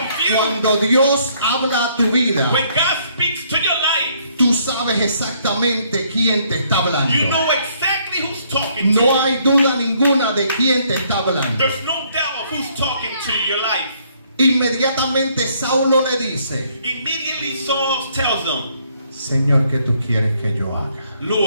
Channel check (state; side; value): inverted; both; correlation -0.67